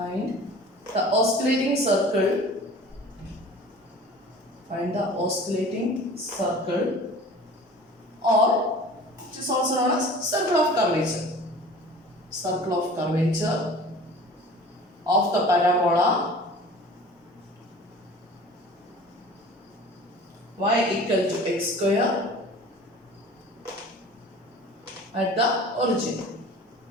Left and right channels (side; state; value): both; normal; correlation 0.43